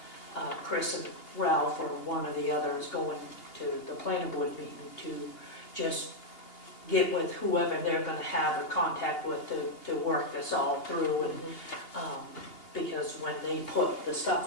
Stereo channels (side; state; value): right; late; 2.8 ms